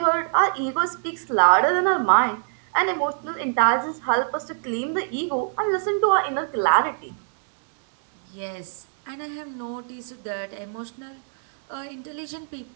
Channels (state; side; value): silent; left; digital silence